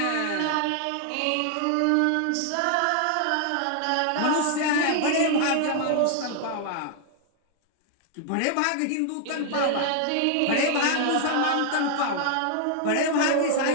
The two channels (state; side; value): different; both; correlation 0.00